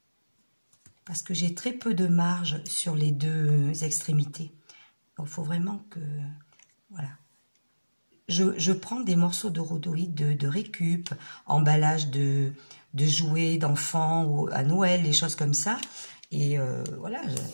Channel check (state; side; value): inverted; both; correlation -1.00